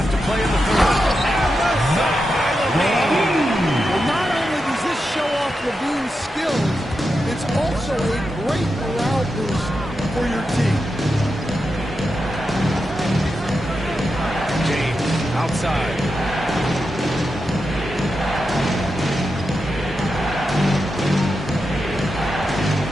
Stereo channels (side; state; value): both; normal; correlation 0.88